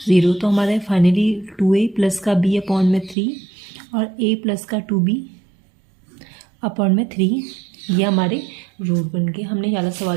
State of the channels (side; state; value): left; drops out; at 3.2 s